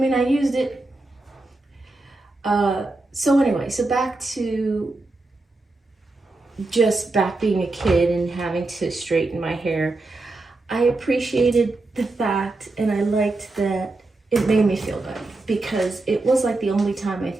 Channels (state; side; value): quieter; left; 3.1 dB